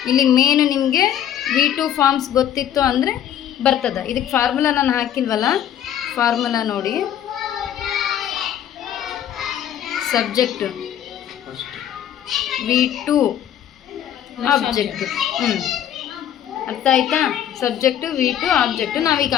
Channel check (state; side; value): quieter; right; 10.4 dB